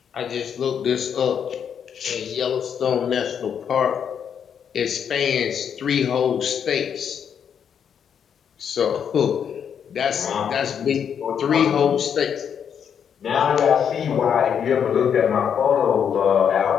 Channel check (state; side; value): quieter; right; 7.9 dB